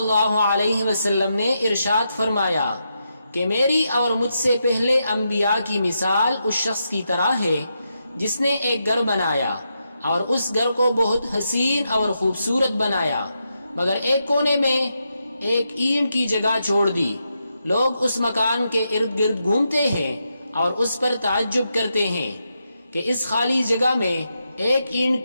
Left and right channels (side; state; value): both; inverted; correlation -0.84